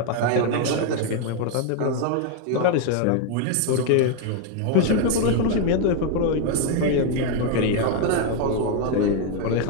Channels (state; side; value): different; both; correlation 0.01